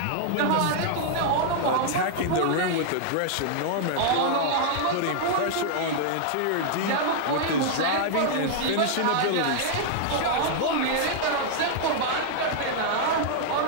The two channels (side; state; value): both; different; correlation -0.01